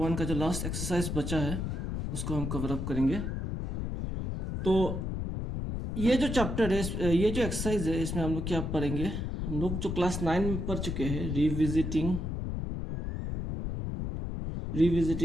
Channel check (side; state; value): left; noise; rumble, 3 dB below the sound